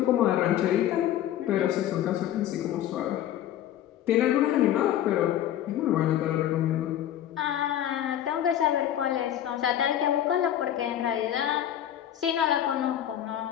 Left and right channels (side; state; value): right; quieter; 11.4 dB